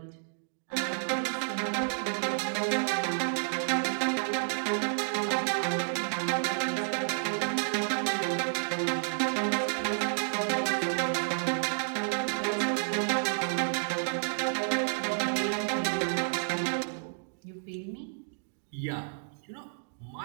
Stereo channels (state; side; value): silent; left; digital silence